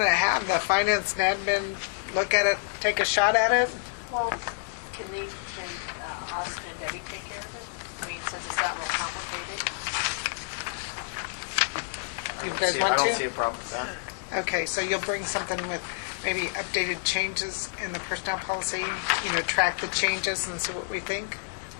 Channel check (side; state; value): right; silent; digital silence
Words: to have the finance and admin look at it, take a shot at it? Well, can Austin and Debbie take care of it? I mean, since it's not real complicated. You guys want to? I don't see a problem with that. Okay, so you'll bring something with maybe updated changes in the personnel policy, track the changes and see what we think?